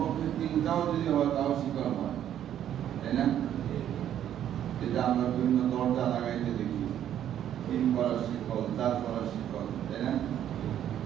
তিনটাও যদি হয় তাও শিকল হয়, তাই না? যেটা আমরা বিভিন্ন দরজা লাগাইতে দেখি, 3 করার শিকল, 4 করার শিকল, তাই না?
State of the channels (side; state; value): left; quieter; 10.6 dB